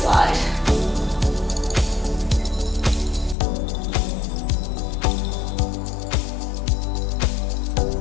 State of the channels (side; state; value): right; drops out; at 3.4 s